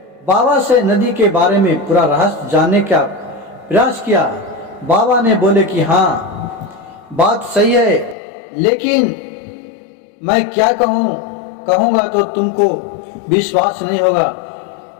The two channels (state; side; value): drops out; right; at 8.2 s